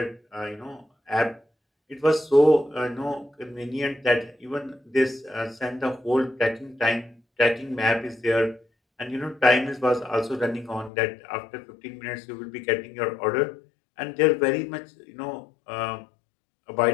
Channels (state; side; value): drops out; right; at 10.9 s